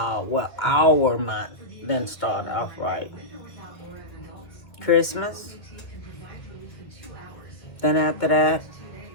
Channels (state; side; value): late; right; 1.9 ms